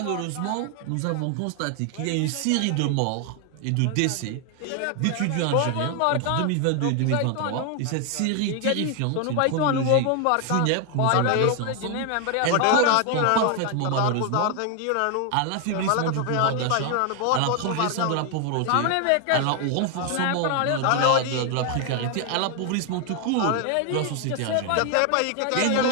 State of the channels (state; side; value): different; both; correlation 0.00